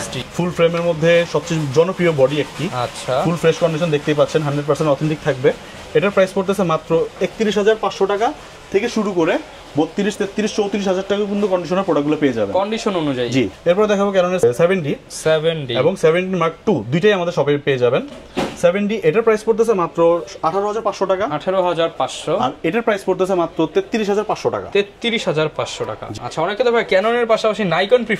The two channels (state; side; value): identical; both; correlation 1.00